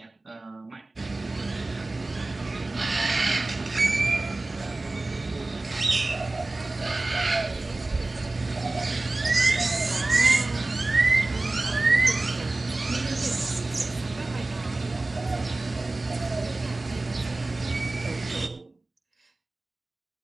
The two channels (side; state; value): left; quieter; 3.0 dB